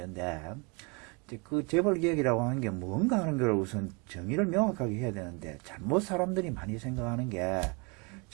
이제 그 재벌 개혁이라고 하는 게 뭔가 하는 걸 우선 정의를 명확하게 해야 되는데, 잘못 사람들이 많이 생각하는 게,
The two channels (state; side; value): quieter; left; 31.2 dB